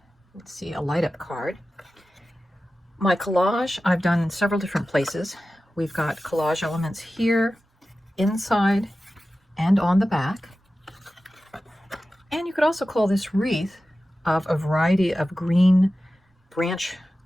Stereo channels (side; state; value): both; normal; correlation 0.94